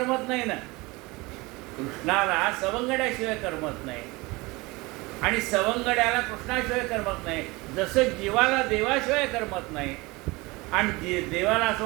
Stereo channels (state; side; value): quieter; left; 23.4 dB